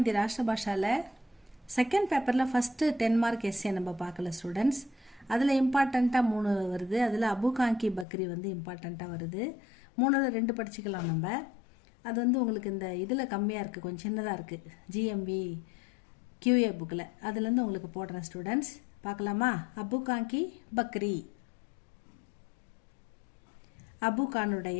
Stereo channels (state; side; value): drops out; right; at 8.1 s